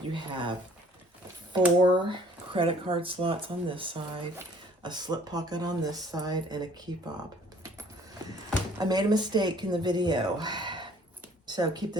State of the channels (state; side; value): normal; both; correlation 0.56